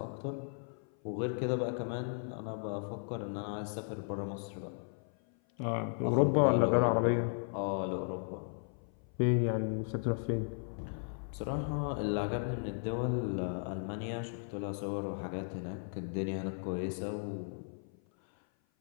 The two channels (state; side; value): silent; right; 54 dB below the other